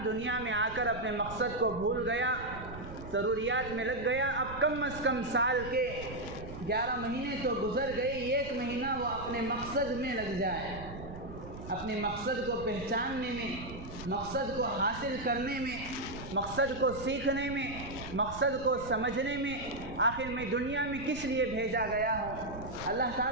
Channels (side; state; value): right; noise; rumble, 12 dB below the sound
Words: دنیا میں آ کر اپنے مقصد کو بھول گیا، ضروریات میں لگ گیا، اب کم از کم سال کے 11 مہینے تو گزر گئے، ایک مہینہ وہ اپنے مقصد میں لگ جائے، اپنے مقصد کو پہچاننے میں، مقصد کو حاصل کرنے میں، مقصد کو سیکھنے میں، مقصد کو سمجھنے میں، آخر میں دنیا میں کس لیے بھیجا گیا ہوں، اللہ